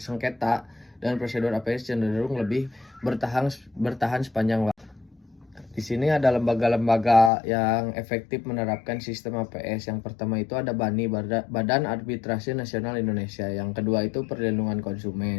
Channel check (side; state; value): right; drops out; at 7.3 s